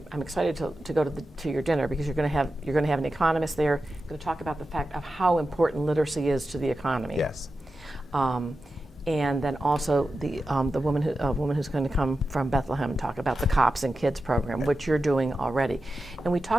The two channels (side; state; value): both; normal; correlation 0.92